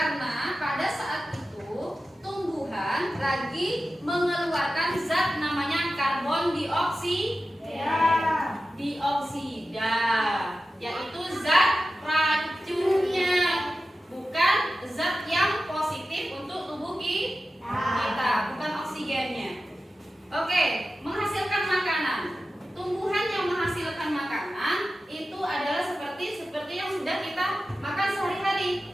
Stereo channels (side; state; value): both; normal; correlation 0.93